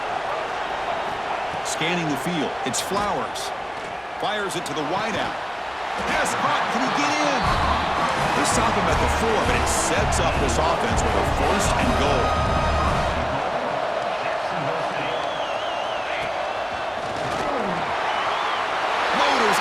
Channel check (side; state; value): both; identical; correlation 1.00